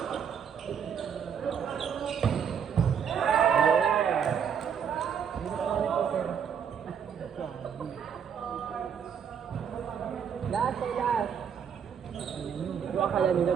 Last ay last. Yung akala nila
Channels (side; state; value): left; quieter; 7.6 dB